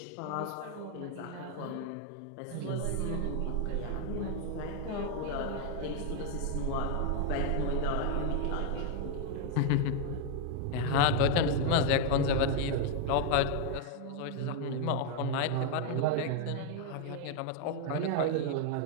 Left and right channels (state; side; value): different; both; correlation 0.00